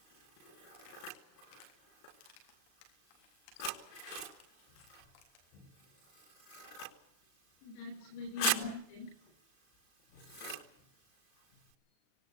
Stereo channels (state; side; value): late; right; 37 ms